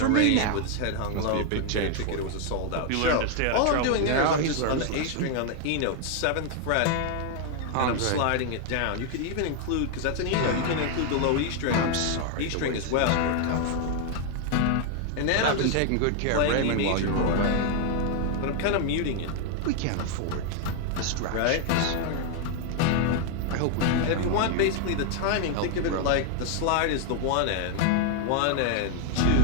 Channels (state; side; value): different; both; correlation 0.00